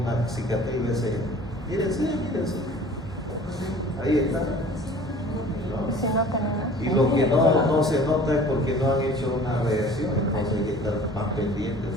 cicatriz de ese. Mírense. Ahí está. ¿No? Y lo que no se nota es porque no han hecho una reacción, entonces hay que estar más pendientes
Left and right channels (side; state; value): both; normal; correlation 0.46